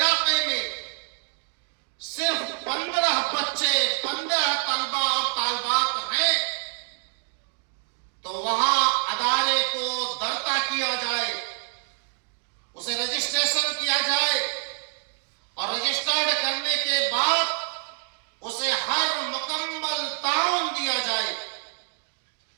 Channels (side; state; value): left; silent; digital silence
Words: میں صرف 15 بچے، 15 طلبہ اور طالبات ہیں تو وہاں ادارے کو درتا کیا جائے، اسے رجسٹریشن کیا جائے، اور رجسٹرڈ کرنے کے بعد اسے ہر مکمل تعاون دیا جائے۔